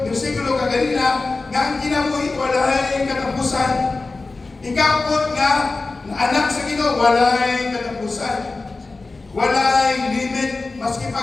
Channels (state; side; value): quieter; right; 3.6 dB